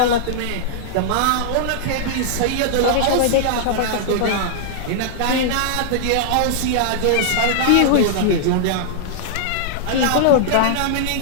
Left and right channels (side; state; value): both; different; correlation -0.01